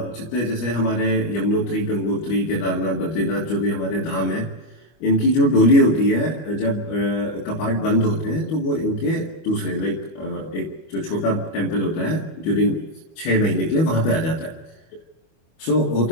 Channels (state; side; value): late; right; 25 ms